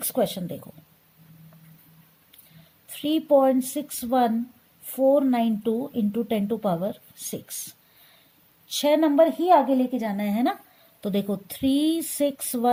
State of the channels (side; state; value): both; identical; correlation 1.00